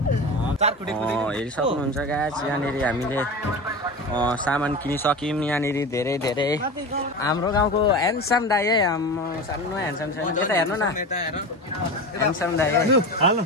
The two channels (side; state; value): both; normal; correlation 0.27